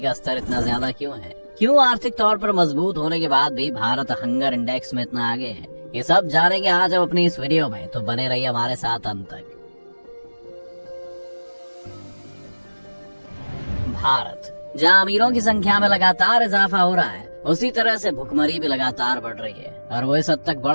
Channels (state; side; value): inverted; both; correlation -1.00